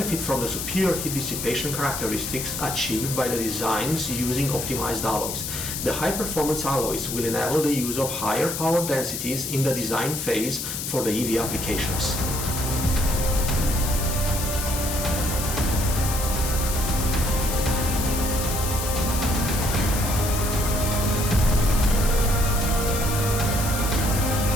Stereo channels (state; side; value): noise; left; hiss, 5 dB below the sound